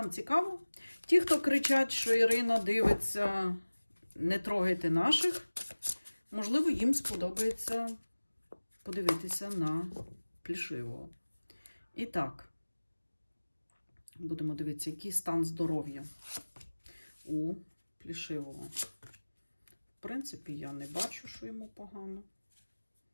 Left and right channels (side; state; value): both; inverted; correlation -1.00